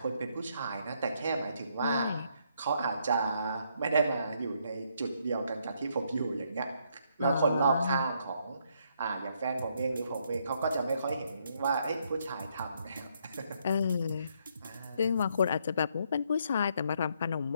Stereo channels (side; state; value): both; inverted; correlation -0.73